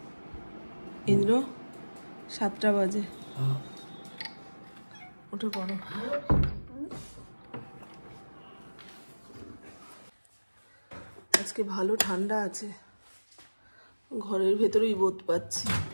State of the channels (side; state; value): both; inverted; correlation -1.00